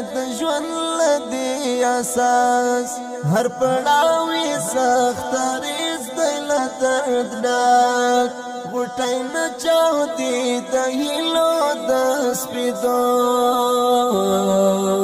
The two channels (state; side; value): identical; both; correlation 1.00